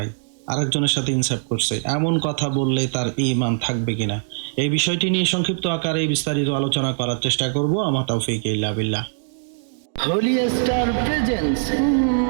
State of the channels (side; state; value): left; silent; digital silence